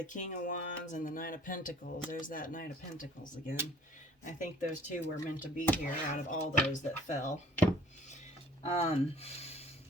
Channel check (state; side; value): normal; both; correlation 0.54